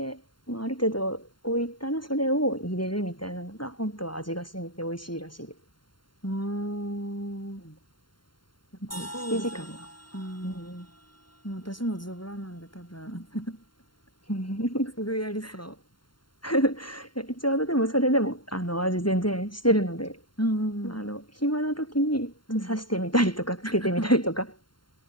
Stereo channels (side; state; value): right; late; 0.72 ms